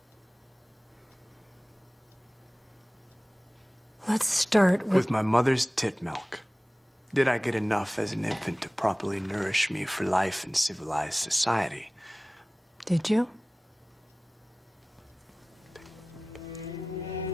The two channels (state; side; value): normal; both; correlation 0.98